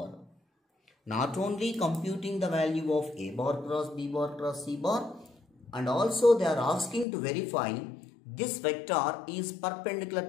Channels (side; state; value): right; drops out; at 7.1 s